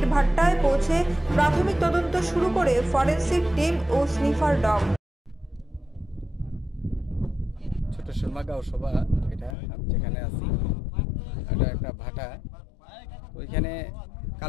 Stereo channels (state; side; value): drops out; right; at 9.6 s